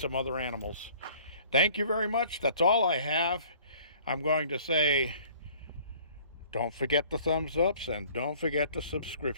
other animals. Thank you very much. That's all I have. I'm going to say, don't forget the thumbs ups and don't forget the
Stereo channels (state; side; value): inverted; both; correlation -0.53